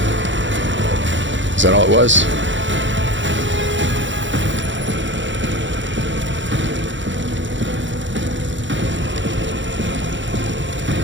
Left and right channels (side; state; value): left; late; 0.54 ms